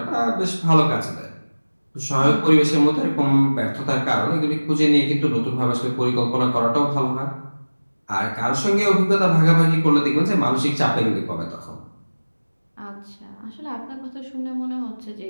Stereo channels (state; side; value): inverted; both; correlation -1.00